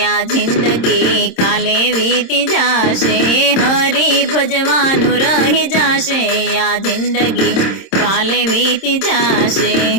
आ जिंदगी काले बीती जाशे। हरि भजवानु रही जाशे आ जिंदगी काले बीती जाशे।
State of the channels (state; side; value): late; right; 26 ms